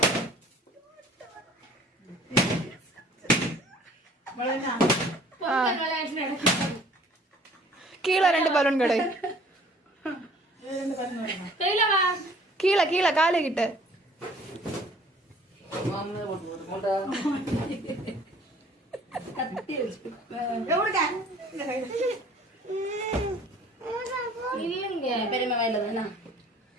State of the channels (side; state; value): both; normal; correlation 0.53